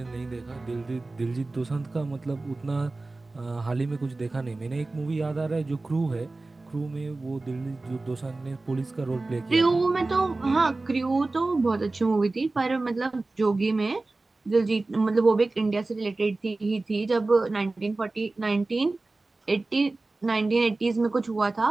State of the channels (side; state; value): left; quieter; 3.2 dB